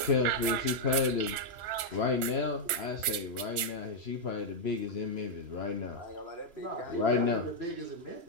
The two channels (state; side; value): late; left; 3.0 ms